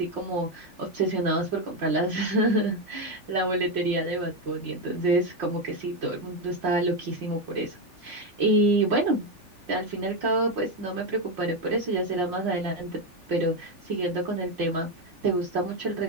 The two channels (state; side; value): late; left; 3.4 ms